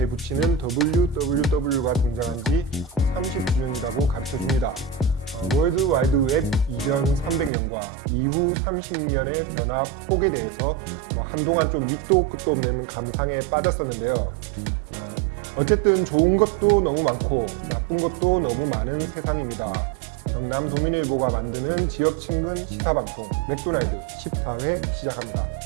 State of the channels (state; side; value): drops out; left; at 7.5 s